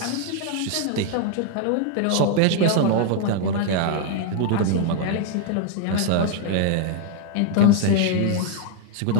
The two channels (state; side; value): different; both; correlation 0.00